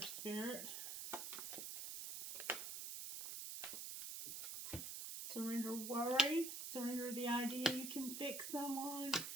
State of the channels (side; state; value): right; noise; hiss, 5 dB below the sound